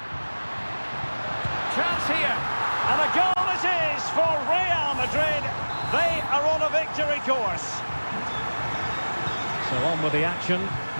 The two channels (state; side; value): inverted; both; correlation -1.00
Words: Chance here, and a goal it is for Real Madrid. They are on a victory course. So on with the action,